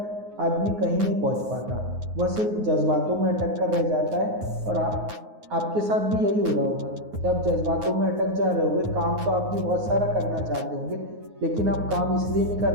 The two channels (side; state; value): left; late; 9.5 ms